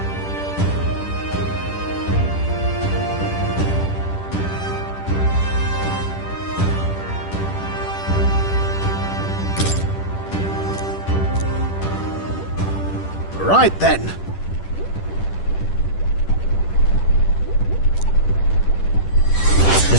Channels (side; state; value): right; late; 10 ms